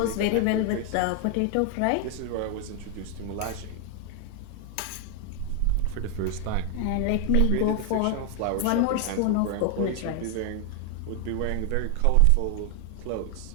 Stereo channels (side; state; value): both; different; correlation 0.00